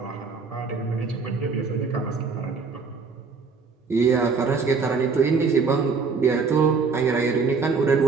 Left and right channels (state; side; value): quieter; left; 4.9 dB